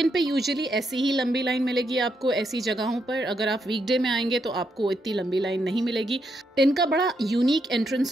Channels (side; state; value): both; normal; correlation 0.80